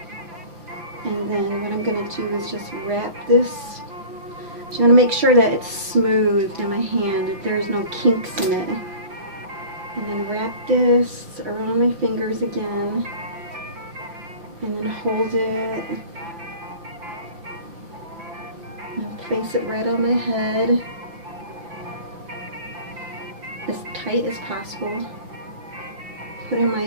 And then what I'm going to do is just wrap this. I'm going to make sure that it's smooth in my hand, that there's no kinks in it. And then wrap this around my fingers again. And then hold it. And place it right on my head. As tight as possible. Put in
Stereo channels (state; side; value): late; left; 5.9 ms